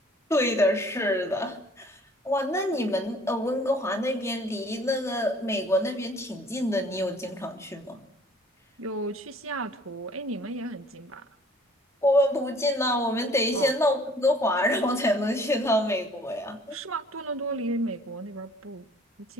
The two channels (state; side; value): normal; both; correlation 0.54